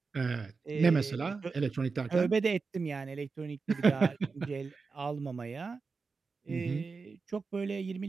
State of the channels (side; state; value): left; quieter; 4.6 dB